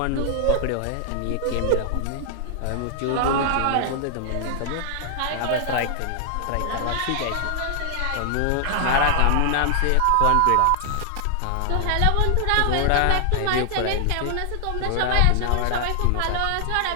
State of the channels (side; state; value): both; different; correlation 0.00